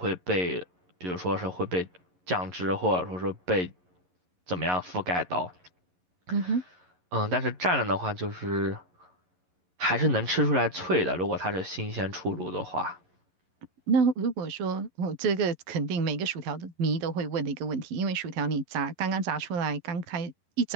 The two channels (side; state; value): left; late; 11 ms